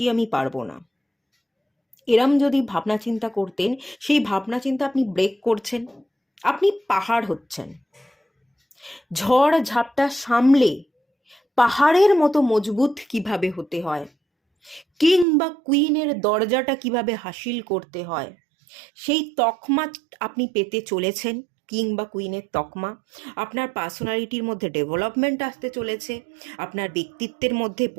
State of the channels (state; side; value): drops out; left; at 15.2 s